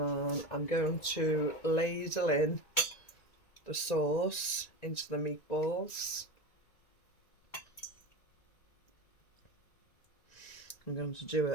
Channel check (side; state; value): right; late; 1.9 ms